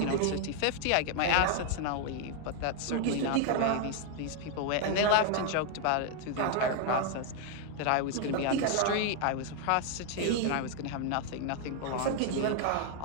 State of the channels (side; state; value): both; different; correlation 0.00